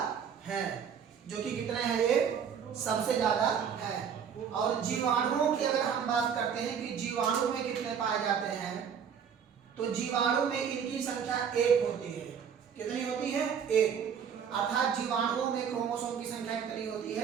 है, जो कि कितने हैं, ये सबसे ज्यादा है। और जीवाणुओं की अगर हम बात करते हैं कि जीवाणु में कितने पाए जाते हैं, तो जीवाणु में इनकी संख्या 1 होती है। कितनी होती है? 1। अर्थात जीवाणुओं में क्रोमोसोम की संख्या कितनी होती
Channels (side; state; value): left; quieter; 7.5 dB